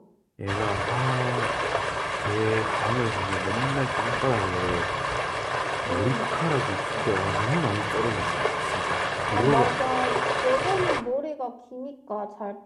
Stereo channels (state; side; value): identical; both; correlation 1.00